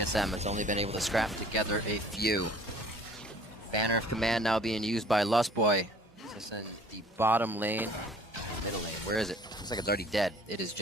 has only been able to scrap together a few. Banner of Command now being used by Lustboy. Just in the bottom lane, middle lane. Where is it? Looks like it's already dead. It is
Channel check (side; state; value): both; normal; correlation 0.52